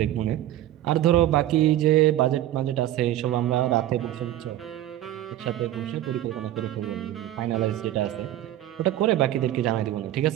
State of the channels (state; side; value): quieter; left; 13.3 dB